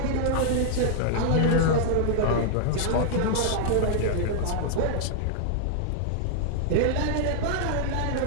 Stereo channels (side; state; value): both; different; correlation -0.01